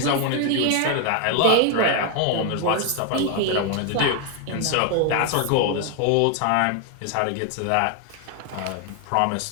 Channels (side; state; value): both; different; correlation 0.01